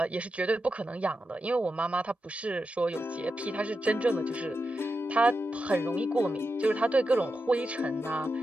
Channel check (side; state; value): both; normal; correlation 0.89